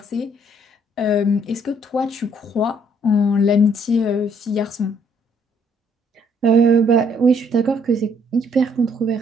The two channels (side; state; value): both; normal; correlation 0.66